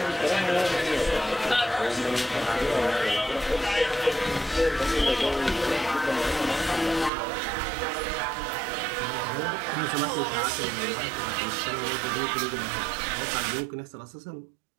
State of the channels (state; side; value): drops out; left; at 7.1 s